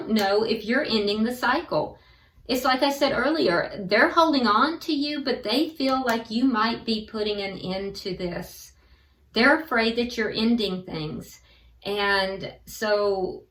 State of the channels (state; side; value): identical; both; correlation 1.00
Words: know if you're ending the cycle. It's like I said earlier, they're holding on to you, but they feel like you might be putting an end to this. They're afraid that you're ending things. And so